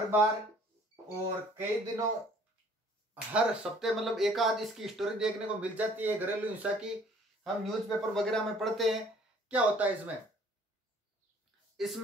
बार और कई दिनों, हर सप्ताह मतलब एक आध इसकी स्टोरी देखने को मिल जाती है घरेलू हिंसा की। हम न्यूज़पेपर वगैरह में पढ़ते हैं। क्या होता है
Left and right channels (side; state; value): both; normal; correlation 0.56